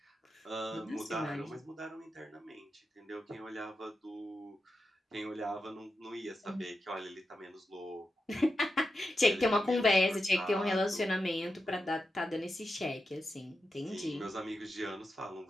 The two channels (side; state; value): both; normal; correlation 0.89